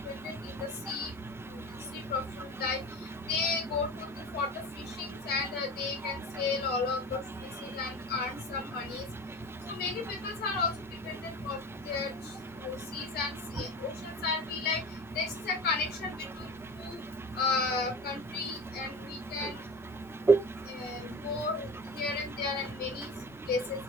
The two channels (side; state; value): both; normal; correlation 0.34